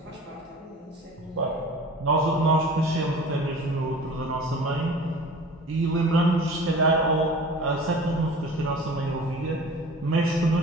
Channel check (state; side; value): normal; both; correlation 0.42